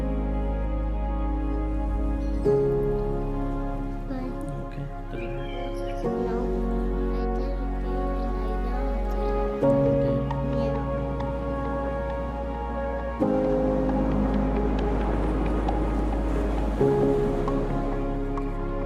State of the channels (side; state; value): both; identical; correlation 1.00